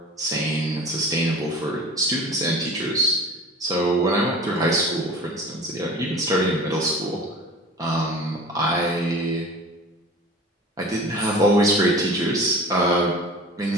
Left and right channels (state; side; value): normal; both; correlation 0.40